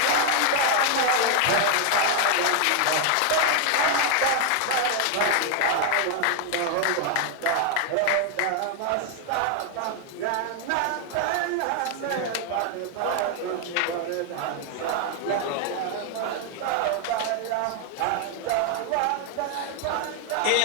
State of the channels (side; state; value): both; different; correlation 0.00